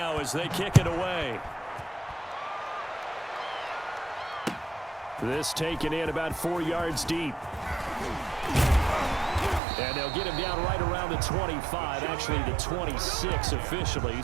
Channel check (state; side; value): drops out; left; at 9.6 s